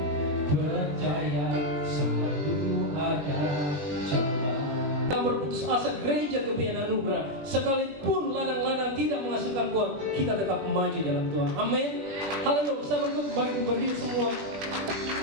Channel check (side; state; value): left; late; 21 ms